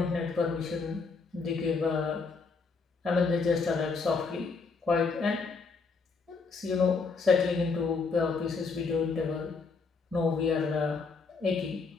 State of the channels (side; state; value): right; quieter; 4.6 dB